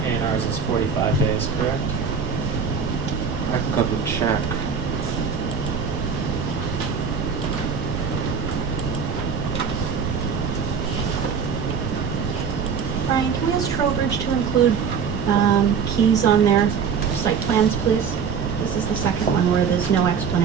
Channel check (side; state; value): left; quieter; 6.2 dB